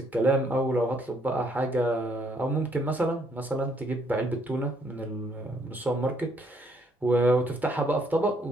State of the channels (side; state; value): both; normal; correlation 0.69